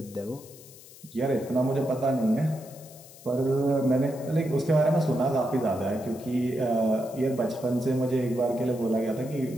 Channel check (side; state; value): left; noise; hiss, 20 dB below the sound